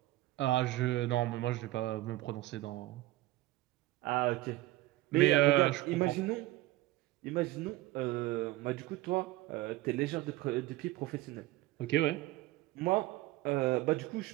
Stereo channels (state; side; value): quieter; left; 17.5 dB